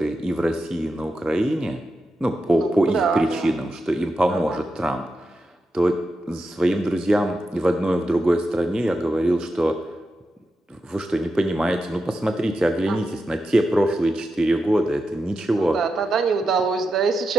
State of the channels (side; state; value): both; normal; correlation 0.89